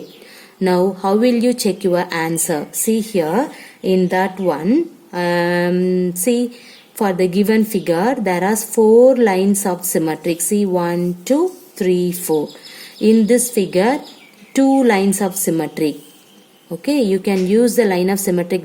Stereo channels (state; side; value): identical; both; correlation 1.00